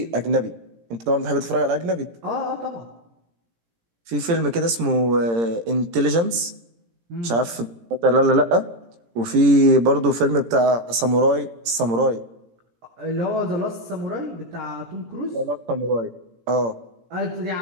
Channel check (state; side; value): late; left; 18 ms